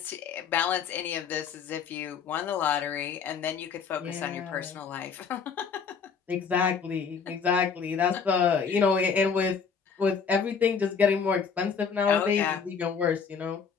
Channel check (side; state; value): right; quieter; 6.1 dB